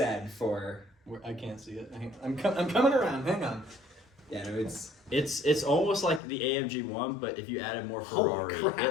for, I can't see it. I'm coming around. Hang on. yeah, no, it's, It's almost like the AMG one, but if you added more Holy Ferrari, crap.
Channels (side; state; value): right; drops out; at 6.2 s